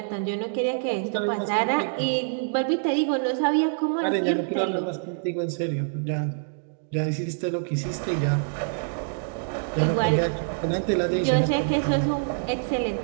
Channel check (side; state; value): left; silent; digital silence